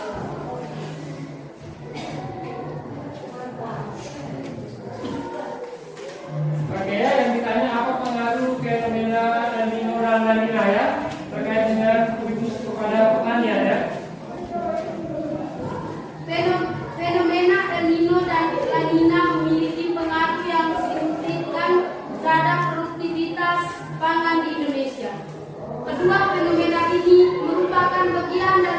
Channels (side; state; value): both; identical; correlation 1.00